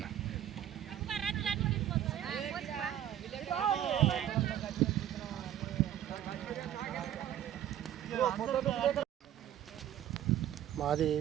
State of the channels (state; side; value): quieter; left; 11.2 dB